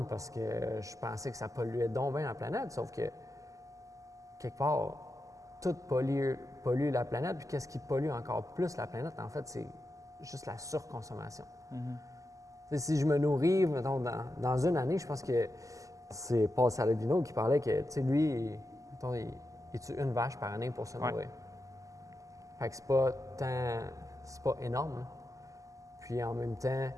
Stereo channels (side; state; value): left; late; 0.16 ms